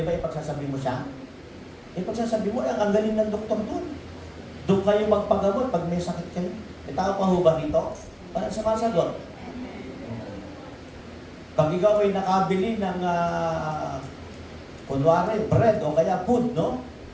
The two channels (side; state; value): both; identical; correlation 1.00